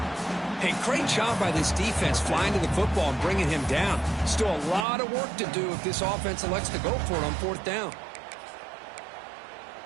Hey, great job by this defense flying to the football and bringing him down. Still a lot of work to do if this offense elects to go for it on fourth down.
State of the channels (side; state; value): left; drops out; at 4.9 s